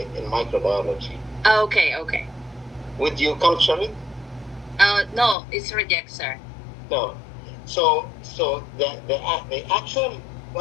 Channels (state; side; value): drops out; right; at 5.4 s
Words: in microbiology, Okay. would you culture it? No, it's reject, sir. No. So the actual